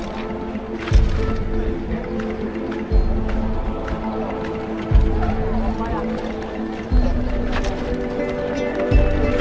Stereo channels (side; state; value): both; identical; correlation 1.00